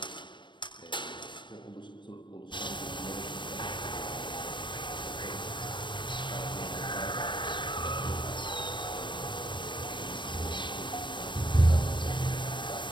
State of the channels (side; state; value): right; late; 0.23 ms